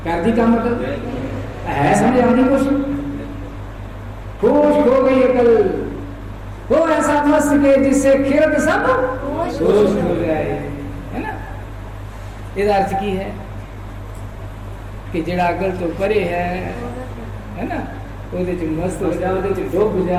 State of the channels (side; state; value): both; identical; correlation 1.00